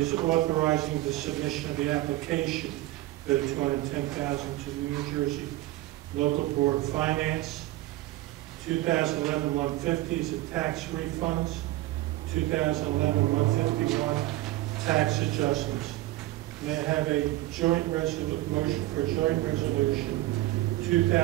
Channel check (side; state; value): left; quieter; 17.0 dB